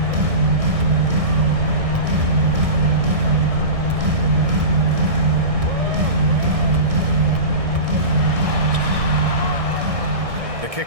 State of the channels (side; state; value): left; late; 1.6 ms